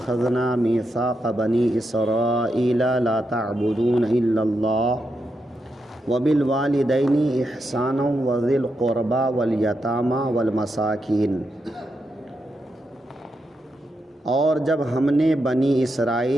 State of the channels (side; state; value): both; normal; correlation 0.84